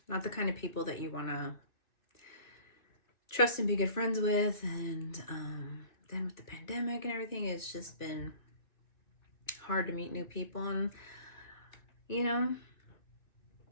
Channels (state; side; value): late; right; 2.6 ms